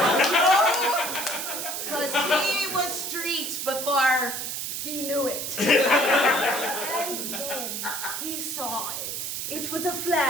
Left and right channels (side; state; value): right; noise; hiss, 4 dB below the sound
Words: Because he was street before he knew it. And then he saw it. It was a